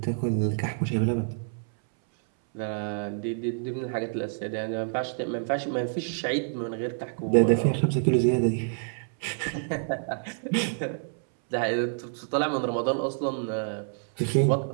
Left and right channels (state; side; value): silent; left; 60 dB below the other